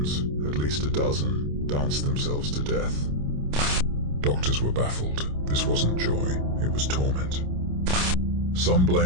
at least a dozen danced themselves to death. Doctors were baffled. This wasn't joy, it was torment. Some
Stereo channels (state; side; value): late; left; 27 ms